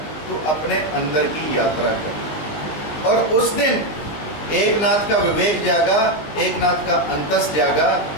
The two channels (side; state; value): right; late; 19 ms